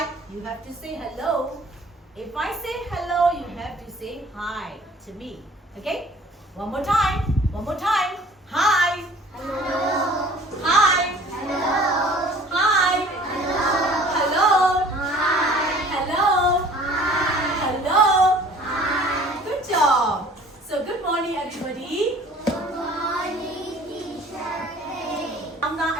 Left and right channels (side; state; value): both; normal; correlation 0.50